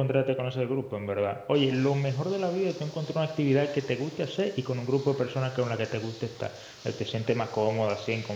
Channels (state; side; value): identical; both; correlation 1.00